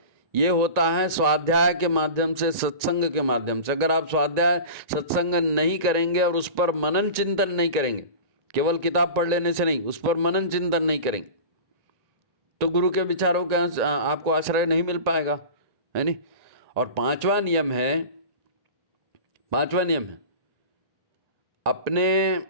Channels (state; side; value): late; left; 1.9 ms